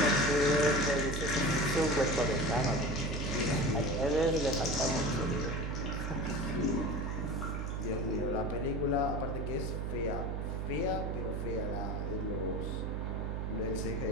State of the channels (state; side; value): noise; right; hum, 2 dB below the sound